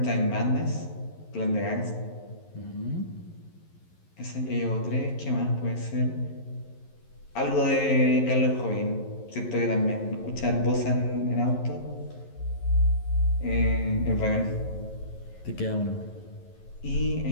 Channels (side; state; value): right; late; 11 ms